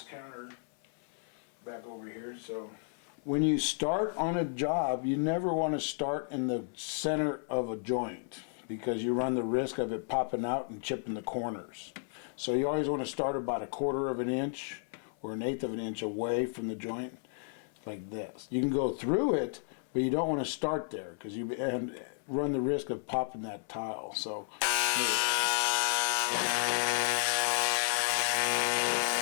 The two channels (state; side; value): silent; right; 56 dB below the other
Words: counter back over here. So when you start on a job, you never want to start in the center of a joint because you run the risk of it popping out and chipping the corners. So you always want to start about 1/4 of an inch or 1/8 of an inch away from the joint, like this. You can go through it, but you don't want to start there because you run the risk of popping that tile. So